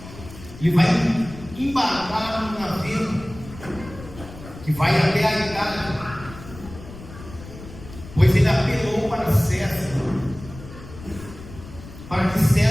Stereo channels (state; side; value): noise; left; rumble, 15 dB below the sound